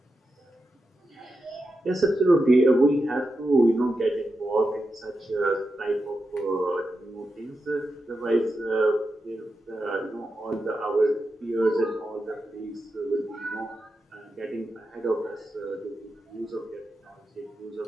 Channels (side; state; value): both; normal; correlation 0.89